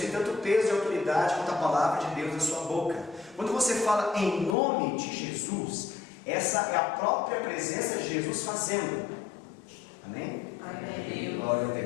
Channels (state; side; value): drops out; right; at 4.5 s